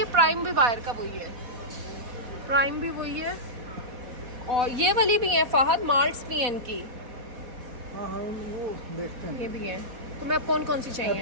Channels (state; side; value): late; left; 4.0 ms